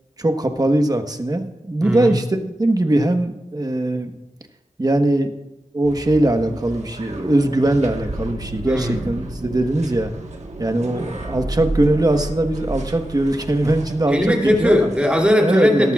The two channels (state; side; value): normal; both; correlation 0.90